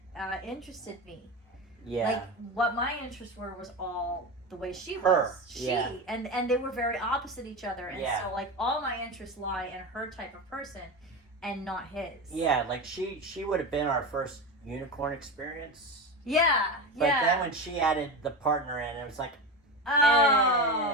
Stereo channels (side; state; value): both; normal; correlation 0.22